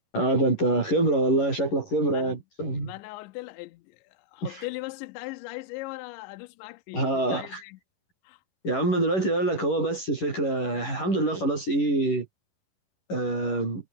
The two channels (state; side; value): late; right; 11 ms